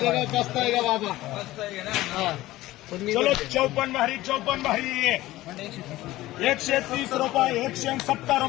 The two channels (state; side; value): quieter; right; 16.9 dB